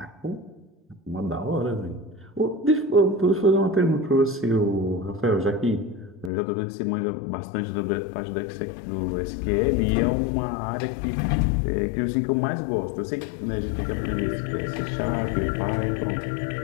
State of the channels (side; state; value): right; drops out; at 6.3 s